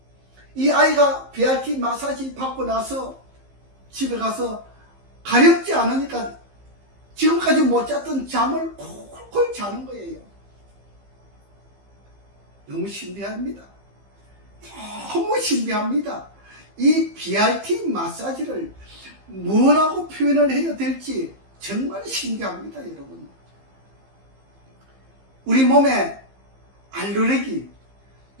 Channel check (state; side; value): late; left; 15 ms